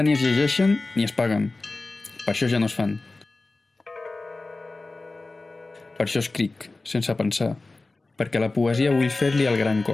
ni es llegeixen ni es paguen. Per això ja no es fan. Per això escric, sense pensar, perquè la poesia vull fer-li el gran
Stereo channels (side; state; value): right; quieter; 3.3 dB